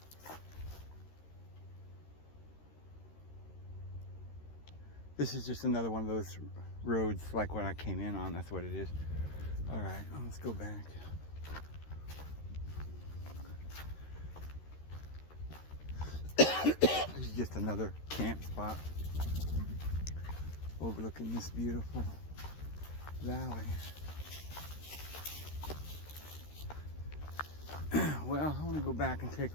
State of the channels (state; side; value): late; right; 13 ms